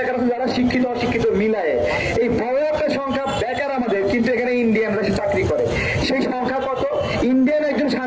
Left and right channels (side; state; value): both; identical; correlation 1.00